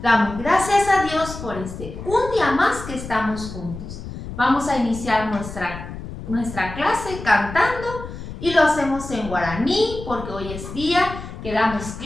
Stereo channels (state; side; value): noise; left; rumble, 10 dB below the sound